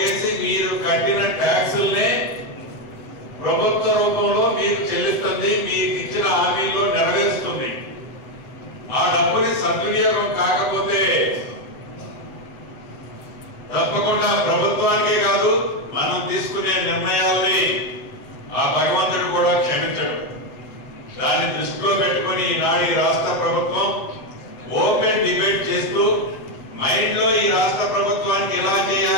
మీరు కట్టిన ట్యాక్సుల్నే ప్రభుత్వ రూపంలో మీకు చెల్లిస్తుంది, మీకు ఇచ్చిన హామీల్లో నెరవేరుస్తుంది. ఆ డబ్బుని సద్వినియోగం కాకపోతే తప్పకుండా ప్రభుత్వానికే కాదు, మనం తీసుకునే నిర్ణయాల్ని ఆ భగవంతుడు కూడా క్షమించడు. దాన్ని దృష్టిలో పెట్టుకుని ఈనాడు ఈ రాష్ట్ర ప్రభుత్వం ఓపెన్ డిబేట్ చేస్తూ మైండ్ లో ఈ రాష్ట్ర ప్రభుత్వానికి ఇలా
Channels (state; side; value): late; right; 7.9 ms